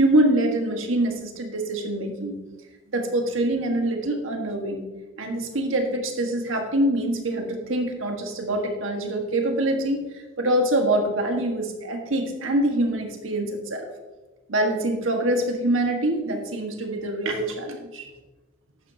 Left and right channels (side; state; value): both; normal; correlation 0.27